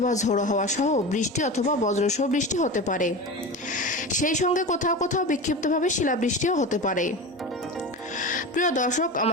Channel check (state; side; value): normal; both; correlation 0.27